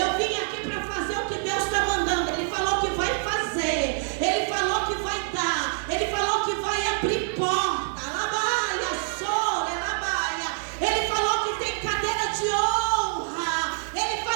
vim aqui para fazer o que Deus está mandando. Ele falou que vai fazer. Ele falou que vai dar. Ele falou que vai abrir porta. Labaia, sora, labaia. Ele falou que tem cadeira de honra. Ele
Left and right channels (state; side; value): silent; left; 61 dB below the other